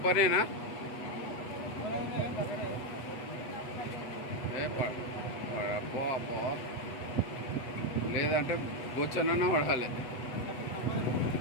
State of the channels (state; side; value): late; right; 8.1 ms